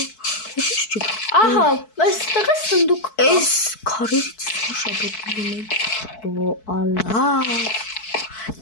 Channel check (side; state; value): right; late; 4.6 ms